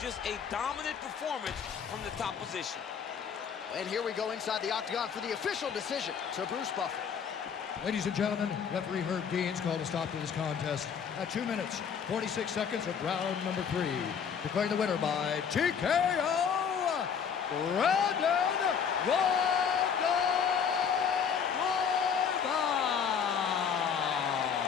a dominant performance from the top position. And here we go inside the octagon for the official decision to Bruce Buffer. Ladies and gentlemen, referee Herb Dean's called a stop to this contest at 2 minutes, 46 seconds of round number 3. Declaring the winner by TKO, Brandon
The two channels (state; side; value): quieter; right; 7.1 dB